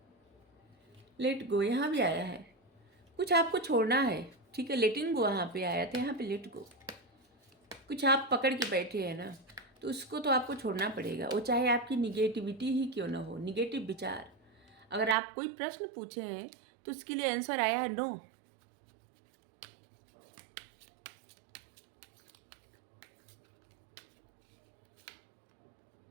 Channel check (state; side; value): drops out; left; at 15.2 s